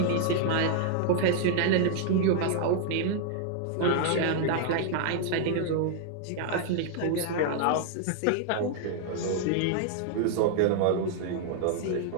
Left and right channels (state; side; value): different; both; correlation 0.00